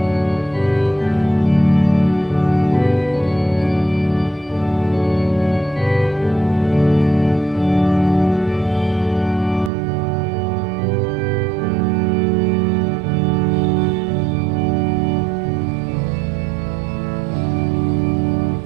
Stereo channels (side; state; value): left; drops out; at 9.7 s